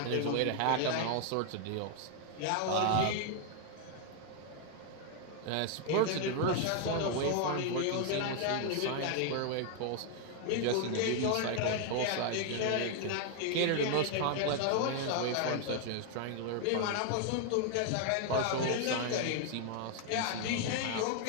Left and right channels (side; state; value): both; different; correlation 0.00